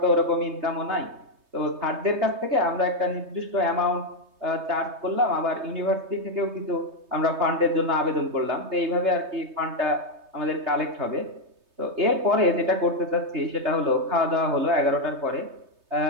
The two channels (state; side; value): late; left; 3.3 ms